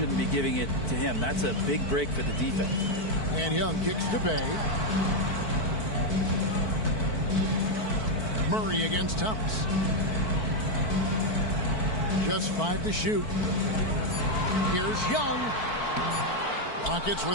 be giving it to him. That's a big break for the defense. And Young kicks to Bay. Murray against Thomas. Just 5 to shoot. Here's Young. Rockets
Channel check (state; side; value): late; right; 4.5 ms